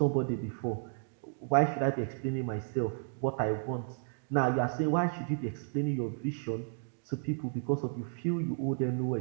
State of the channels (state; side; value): silent; left; digital silence